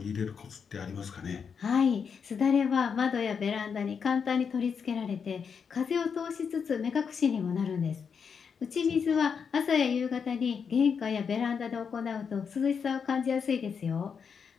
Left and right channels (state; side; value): quieter; right; 6.4 dB